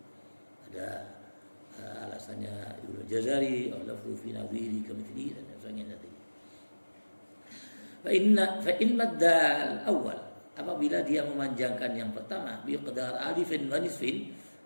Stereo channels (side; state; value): both; inverted; correlation -1.00